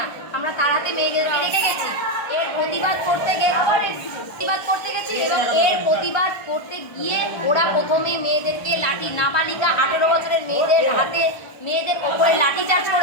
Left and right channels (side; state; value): right; late; 1.2 ms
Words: আমরা তাড়াতে মেয়েদেরকে রেখে গেছি। এর প্রতিবাদ করতে গেছি এবং এর প্রতিবাদ করতে গিয়ে ওরা প্রথমে মেয়েদেরকে লাঠি, নাবালিকা 18 বছরের মেয়েদের হাতে, মেয়েদের ওপরে লাঠি চার্জ